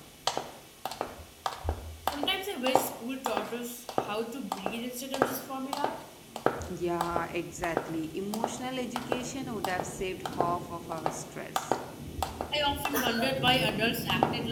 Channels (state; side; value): identical; both; correlation 1.00